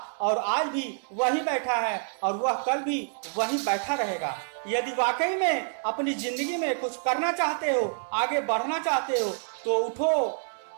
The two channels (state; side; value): silent; left; 60 dB below the other